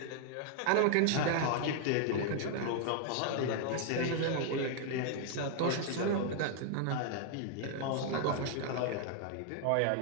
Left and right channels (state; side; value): different; both; correlation 0.00